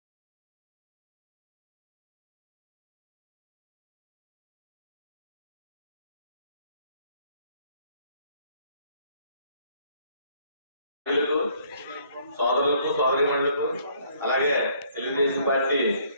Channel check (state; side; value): inverted; both; correlation -0.63